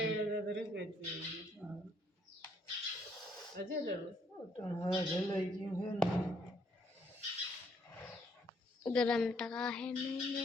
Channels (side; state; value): both; normal; correlation 0.69